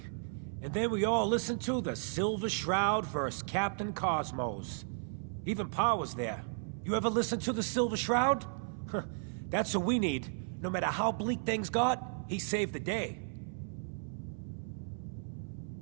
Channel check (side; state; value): left; silent; 55 dB below the other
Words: And then we all listened to the Silver Shroud vs. Captain Cosmos. Even Pa was there. You ever listen to the Silver Shroud? That's what we need. No matter how bleak things got, he saved the day.